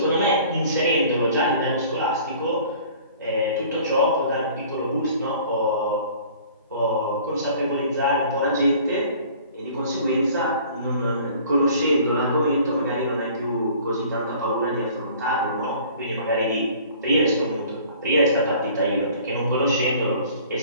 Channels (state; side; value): inverted; both; correlation -0.50